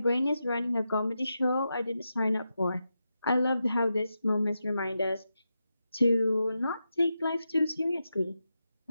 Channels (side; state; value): both; inverted; correlation -0.88